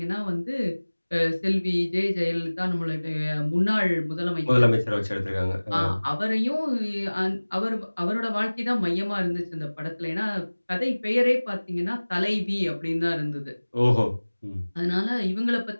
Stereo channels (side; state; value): both; inverted; correlation -1.00